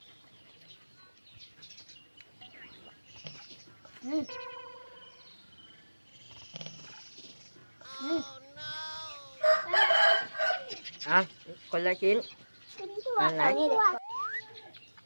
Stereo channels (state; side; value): inverted; both; correlation -1.00